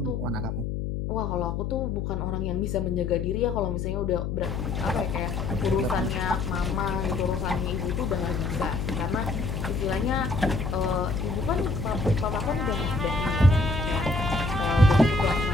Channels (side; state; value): left; noise; hum, 2 dB below the sound